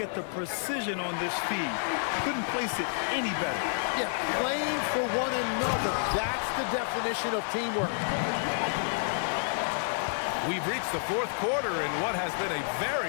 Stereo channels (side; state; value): right; silent; 58 dB below the other